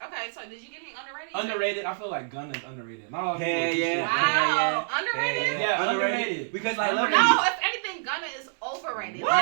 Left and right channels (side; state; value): left; silent; 60 dB below the other